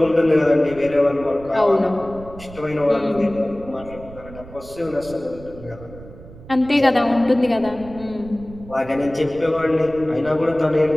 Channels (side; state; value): right; noise; rumble, 17 dB below the sound